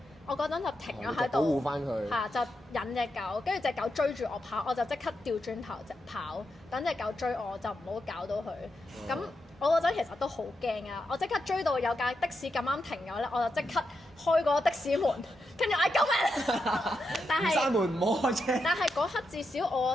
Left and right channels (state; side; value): normal; both; correlation 0.85